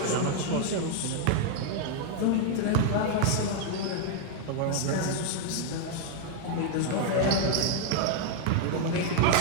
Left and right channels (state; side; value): different; both; correlation 0.00